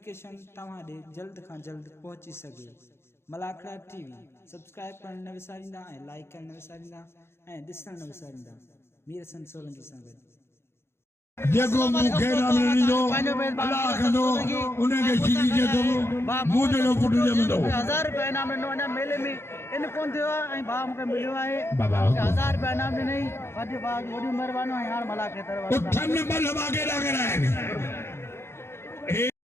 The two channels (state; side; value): late; right; 0.12 ms